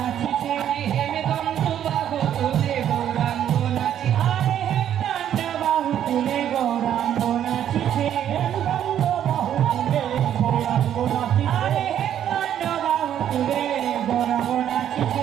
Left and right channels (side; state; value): left; quieter; 10.3 dB